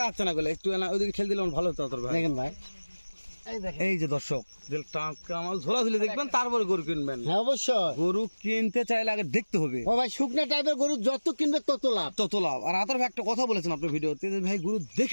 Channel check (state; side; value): inverted; both; correlation -1.00